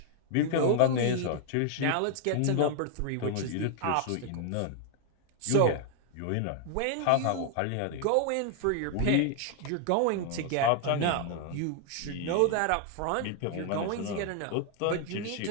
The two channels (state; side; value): different; both; correlation 0.00